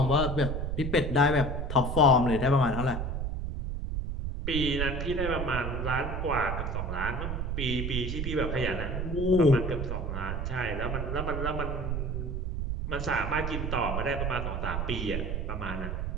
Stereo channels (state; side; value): noise; right; rumble, 2 dB below the sound